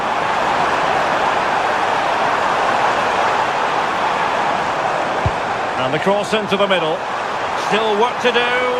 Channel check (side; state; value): both; identical; correlation 1.00